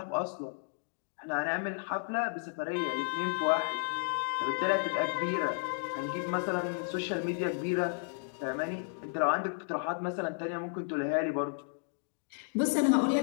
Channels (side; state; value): right; silent; digital silence